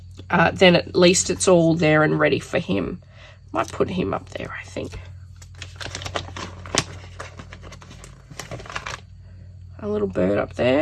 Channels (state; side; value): identical; both; correlation 1.00